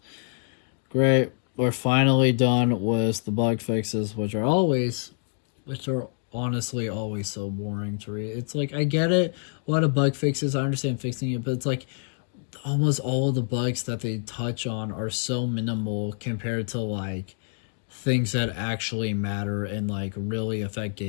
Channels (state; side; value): silent; right; 61 dB below the other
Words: Great. We're finally done with the bug fixes, which are honestly always so boring to read. It's like, I get it, a lot of bug fixes, I understand fixing it, but it's like almost all of the bugs that they touch on are so minimal compared to like things that actually matter and like really affect